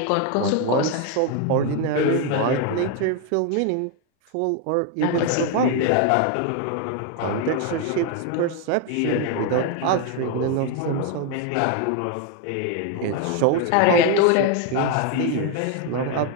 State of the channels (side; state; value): both; different; correlation 0.01